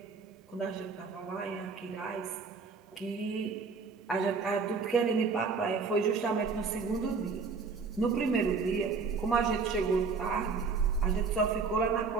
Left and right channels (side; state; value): left; quieter; 4.8 dB